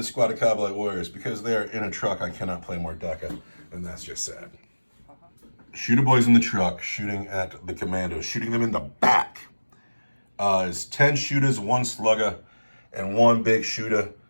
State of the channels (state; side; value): inverted; both; correlation -1.00